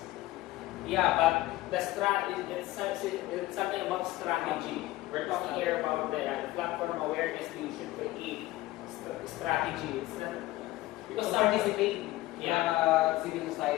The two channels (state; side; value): quieter; right; 17.4 dB